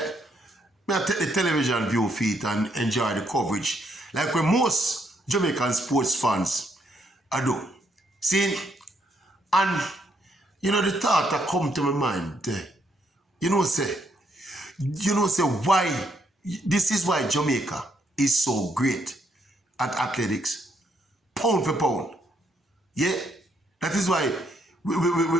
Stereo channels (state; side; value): normal; both; correlation 0.73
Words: I take the television view feed and enjoy the coverage like when most Jamaican sports fans I do. See, and you know the thought that come to my mind, say why, this is why Jamaica is so great at athletics, pound for pound. Yeah, that is why